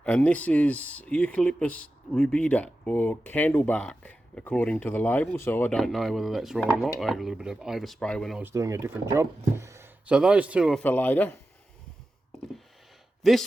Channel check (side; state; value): both; normal; correlation 0.93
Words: and this is Eucalyptus rubida, or candlebark, according to the label, so I don't know whether that's right or not. I had a little bit of overspray when I was doing a different job. So those two are for later.